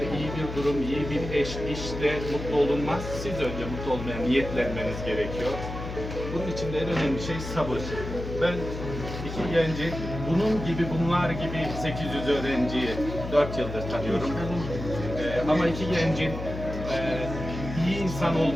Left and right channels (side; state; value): left; noise; hum, 8 dB below the sound